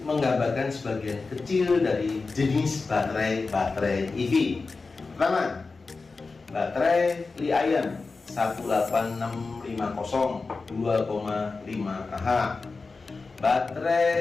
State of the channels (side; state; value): right; quieter; 4.1 dB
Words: menggambarkan sebagian kecil dari jenis baterai EV. Pertama, baterai Li-ion 18650 2,5 Ah.